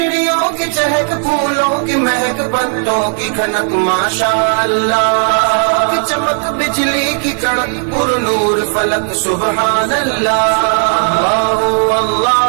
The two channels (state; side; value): silent; left; 56 dB below the other